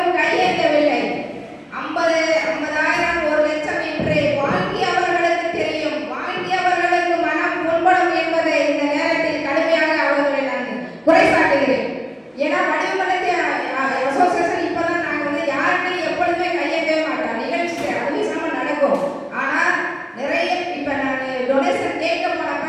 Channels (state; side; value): identical; both; correlation 1.00